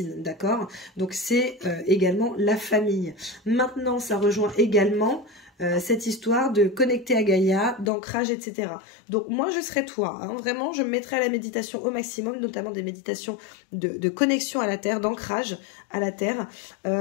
d'accord? Donc c'est également la famille. Maintenant, ça rejoint également cette histoire de connecter à Gaïa, d'ancrage, etc. Donc moi, je serais toi. Hein, vraiment, je me mettrais à la méditation au maximum, notamment des méditations de connexion à la terre, d'ancrage à la terre.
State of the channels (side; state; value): right; drops out; at 7.9 s